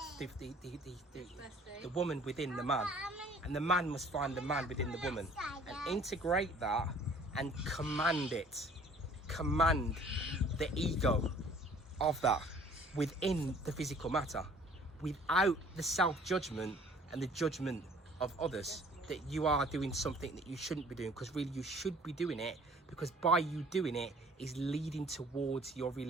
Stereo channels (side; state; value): both; normal; correlation 0.54